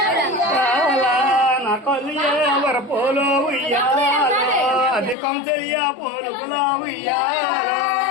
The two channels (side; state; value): right; drops out; at 5.2 s